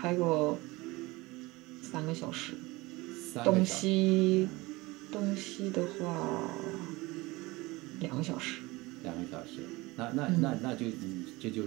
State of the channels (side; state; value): left; quieter; 22.1 dB